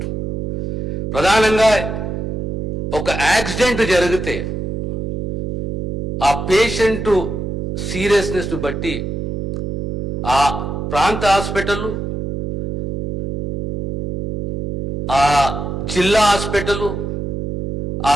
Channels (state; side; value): noise; right; hum, 2 dB below the sound